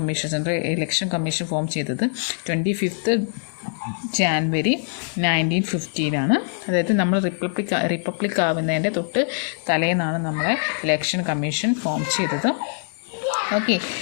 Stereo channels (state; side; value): silent; right; digital silence